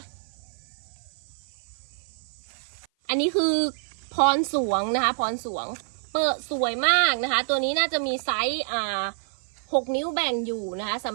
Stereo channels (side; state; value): left; silent; 55 dB below the other